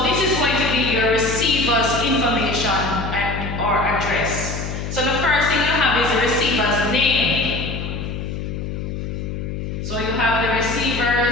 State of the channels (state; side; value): noise; left; hum, 5 dB below the sound